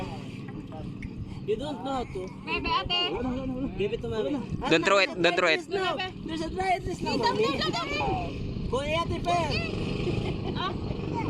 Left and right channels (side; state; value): both; identical; correlation 1.00